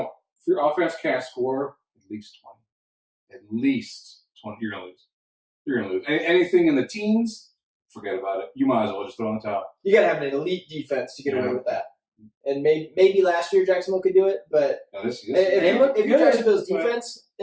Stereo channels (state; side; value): identical; both; correlation 1.00